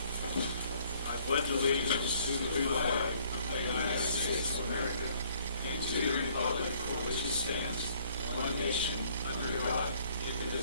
pledge allegiance to the flag of the United States of America and to the republic for which it stands, one nation, under God,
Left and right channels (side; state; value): both; inverted; correlation -0.62